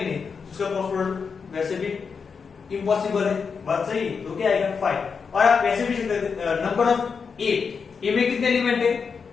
नहीं, उसका क्रॉस प्रोडक्ट वैसे भी इम्पॉसिबल है, बात सही है, तो क्या आएगा 5। और आप वैसे भी नंबर ऑफ a में कितने एलिमेंट है,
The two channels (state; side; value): quieter; right; 5.7 dB